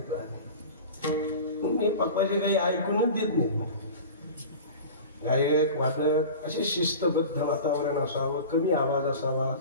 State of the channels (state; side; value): inverted; both; correlation -0.35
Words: मी पप्पाचे काही ऐकूनच देत नाही. गायक वादक असे शिस्तबद्ध वातावरण असावं, कमी आवाज असावा